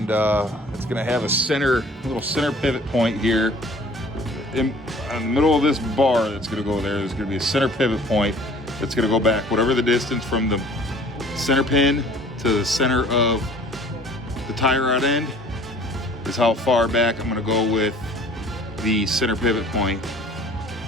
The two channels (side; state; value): both; normal; correlation 0.51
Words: it's gonna have a little center pivot point here in the middle of this bar that's gonna go there. There's gonna be a center pivot point that's gonna go back whatever the distance from the center pin to the center of the tie rod end is how far back I'm gonna go with the center pivot point.